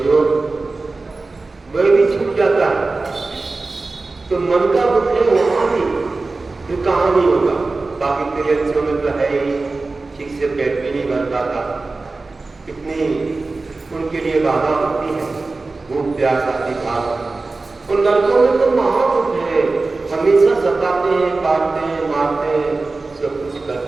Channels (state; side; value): quieter; left; 3.6 dB